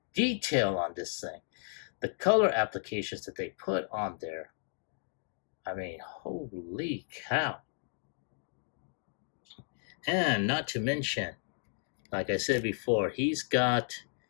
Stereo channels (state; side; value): silent; right; digital silence